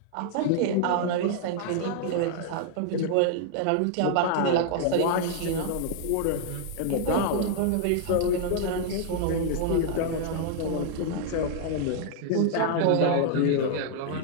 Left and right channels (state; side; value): different; both; correlation -0.01